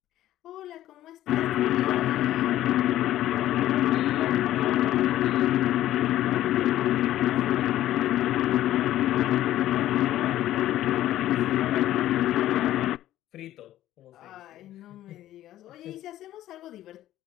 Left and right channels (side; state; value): right; quieter; 13.6 dB